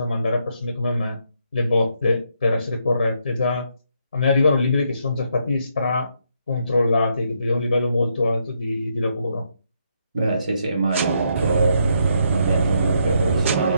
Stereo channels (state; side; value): inverted; both; correlation -0.76